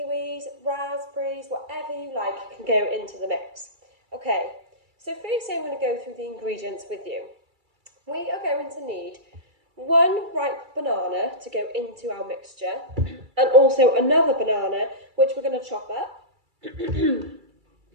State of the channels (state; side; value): late; left; 2.3 ms